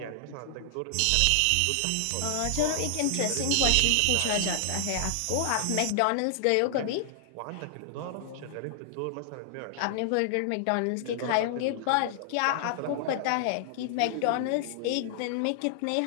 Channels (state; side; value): different; both; correlation -0.01